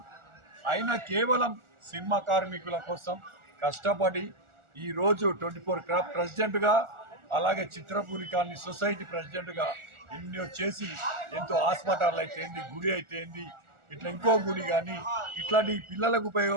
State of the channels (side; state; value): left; late; 1.4 ms